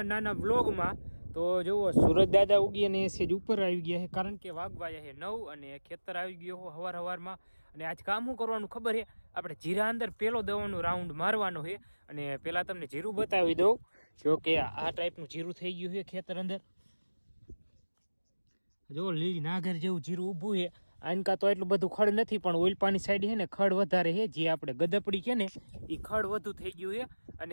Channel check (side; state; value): both; inverted; correlation -1.00